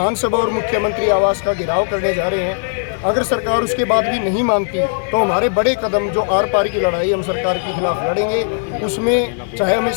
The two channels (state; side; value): silent; right; 68 dB below the other